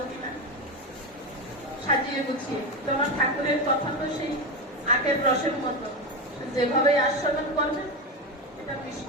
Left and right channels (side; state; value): both; normal; correlation 0.16